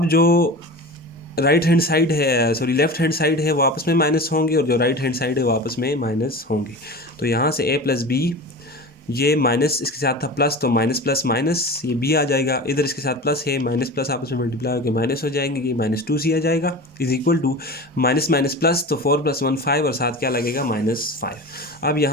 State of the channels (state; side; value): normal; both; correlation 0.32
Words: जो राइट हैंड साइड है, सॉरी लेफ्ट हैंड साइड है, वो आपस में माइनस होंगे और जो राइट हैंड साइड है वो आपस में माइनस होंगे। तो यहाँ से a प्लस बी, ये माइनस इसके साथ था प्लस, तो माइनस प्लस माइनस ये b आ जाएगा, इधर इसके साथ प्लस है, माइनस प्लस आपस में मल्टीप्लाई होकर माइनस हो जाएंगे, ये -2c आ जाएगा is equal to minus minus plus, तो 4 + 1 5 और साथ क्या लगेगा -5। अब